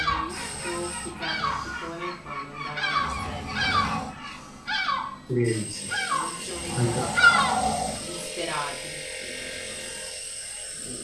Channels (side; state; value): both; identical; correlation 1.00